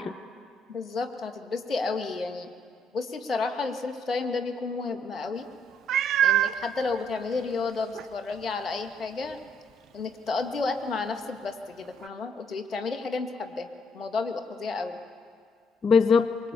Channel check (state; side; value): normal; both; correlation 0.70